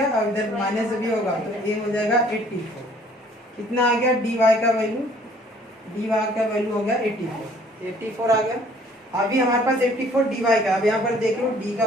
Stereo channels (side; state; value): both; normal; correlation 0.58